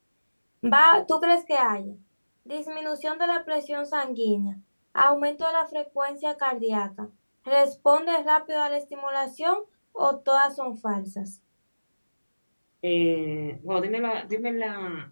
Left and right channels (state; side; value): inverted; both; correlation -1.00